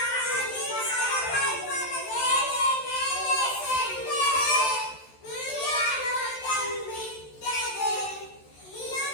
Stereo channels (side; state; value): right; late; 13 ms